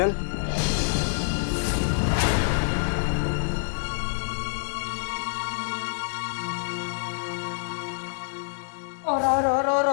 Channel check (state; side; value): silent; right; 60 dB below the other